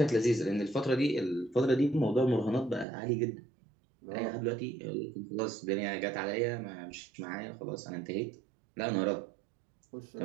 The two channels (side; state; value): left; drops out; at 2.9 s